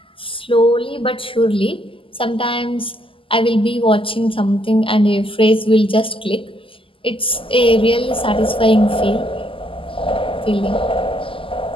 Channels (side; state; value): right; late; 0.25 ms